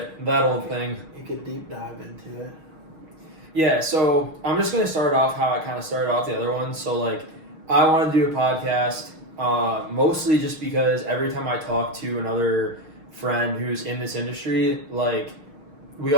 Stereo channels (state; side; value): late; left; 6.4 ms